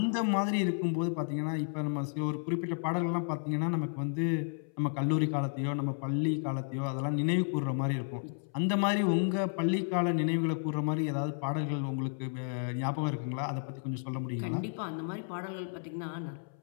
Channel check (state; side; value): silent; right; 56 dB below the other